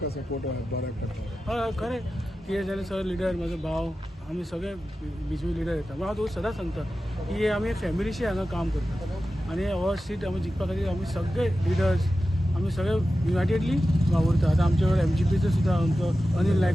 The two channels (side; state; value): both; normal; correlation 0.93